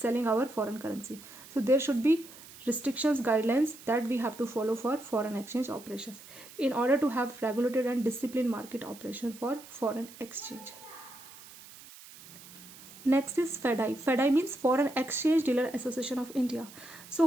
our foreign currency, so there should be restrictions, guidelines that we have to follow for foreign exchange operations in order to have regulated and disciplined market operation for foreign exchange. Next is FEDI. FEDI means Foreign Exchange Dealer Association of India. So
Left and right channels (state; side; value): noise; right; hiss, 18 dB below the sound